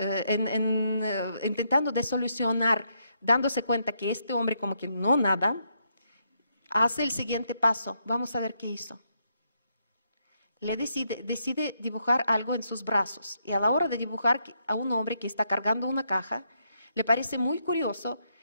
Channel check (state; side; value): inverted; both; correlation -0.77